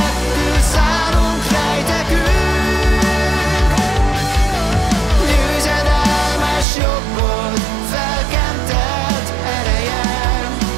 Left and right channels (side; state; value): left; drops out; at 6.7 s